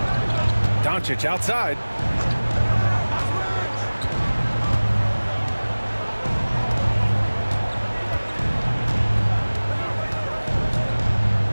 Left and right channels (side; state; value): both; inverted; correlation -1.00